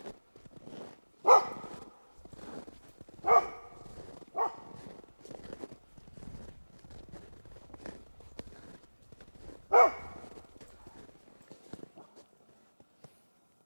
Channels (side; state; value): both; inverted; correlation -1.00